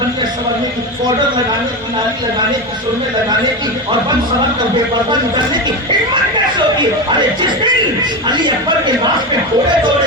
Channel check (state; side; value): normal; both; correlation 0.19